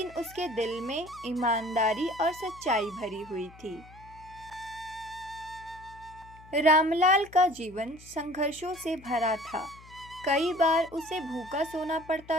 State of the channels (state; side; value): noise; left; hum, 21 dB below the sound